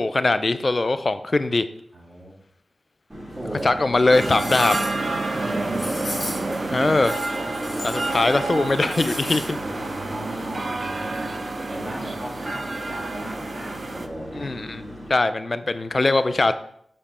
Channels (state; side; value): normal; both; correlation 0.95